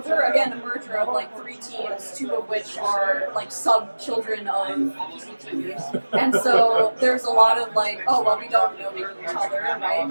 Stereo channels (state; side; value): inverted; both; correlation -1.00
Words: we're again a merger of 3 teams, 2 of which are sub children of PCT, and so there's a lot of we don't know each other, right,